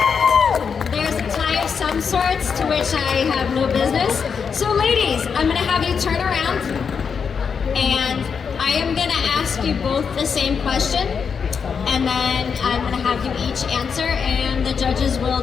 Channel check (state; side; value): quieter; right; 6.3 dB